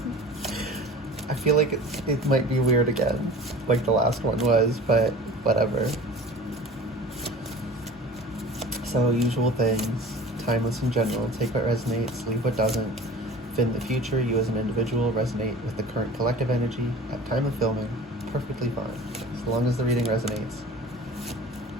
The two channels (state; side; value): normal; both; correlation 0.40